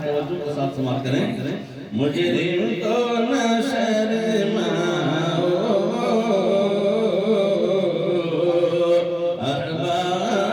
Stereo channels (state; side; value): identical; both; correlation 1.00